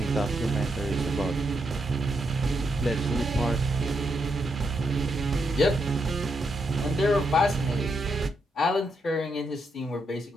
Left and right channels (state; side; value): normal; both; correlation 0.80